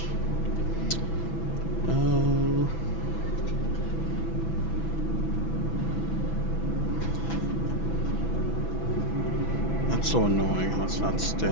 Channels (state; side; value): late; right; 6.1 ms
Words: Um, that's so annoying how it's not